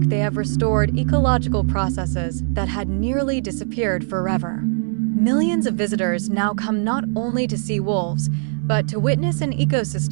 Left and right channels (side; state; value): left; silent; 65 dB below the other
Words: they have restored ecological processes that had nearly disappeared forever. Millions of visitors now come not only to see wolves, but to witness an